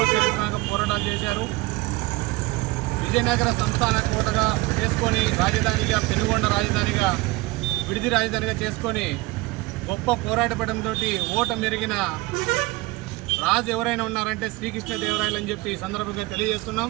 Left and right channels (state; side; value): quieter; left; 21.5 dB